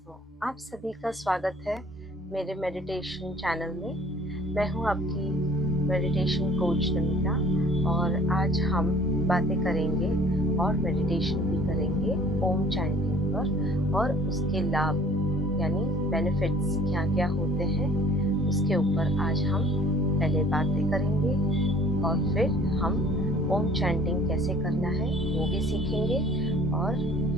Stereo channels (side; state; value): both; normal; correlation 0.52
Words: आप सभी का स्वागत है मेरे मेडिटेशन चैनल में। मैं हूं आपकी मेडिटेशन कोच नमिता और आज हम बातें करेंगे और मेडिटेशन भी करेंगे ओम चैंटिंग पर और उसके लाभ यानी बेनिफिट्स क्या क्या होते हैं उसके ऊपर आज हम पहले बातें करेंगे और फिर हम ओम चैंटिंग कैसे करना है वो भी सीखेंगे और